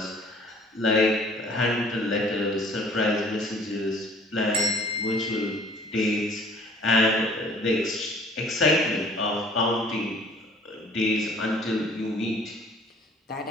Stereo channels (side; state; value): both; normal; correlation 0.52